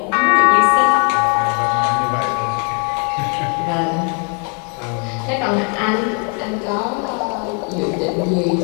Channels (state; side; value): quieter; right; 38.6 dB